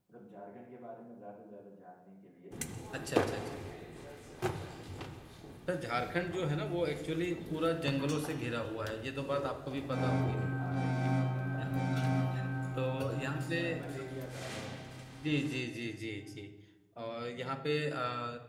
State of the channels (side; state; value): both; identical; correlation 1.00